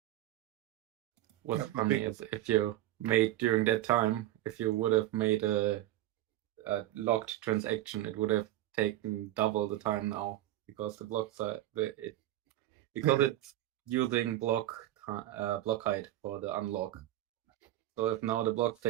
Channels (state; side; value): quieter; left; 14.3 dB